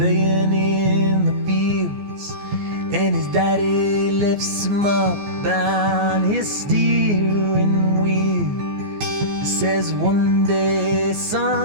in the fields, and his daddy lifts him up on his steering wheel. He says, one day,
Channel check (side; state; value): left; late; 14 ms